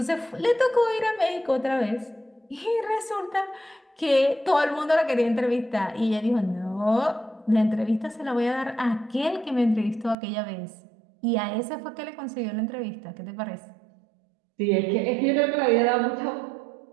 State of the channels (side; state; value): left; drops out; at 10.2 s